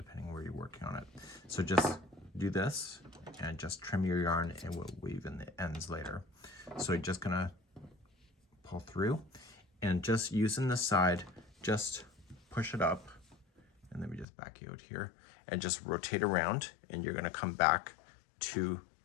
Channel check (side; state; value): right; drops out; at 14.2 s